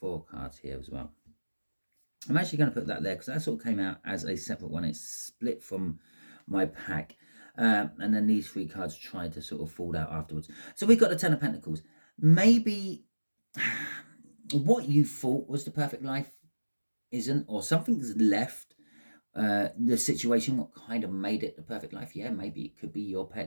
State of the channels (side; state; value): both; inverted; correlation -1.00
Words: cards here as well. I'm actually going to put that there because that sort of came out as a separate one. It's split from my pack, and then these 3 cards tried to sort of fall out afterwards. So we've got the Ten of Pentacles. Maybe what you thought was the perfect life isn't, or something's left the situation what kind of made it the perfect life. Yeah, maybe it could be your